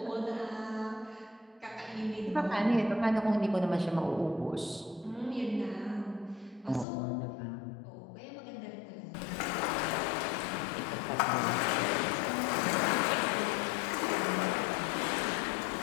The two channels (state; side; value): drops out; right; at 6.9 s